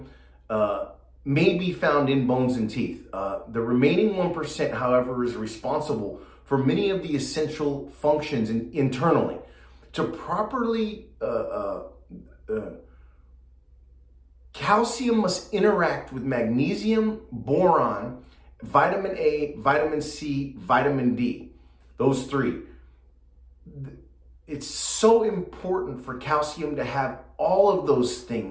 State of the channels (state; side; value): identical; both; correlation 1.00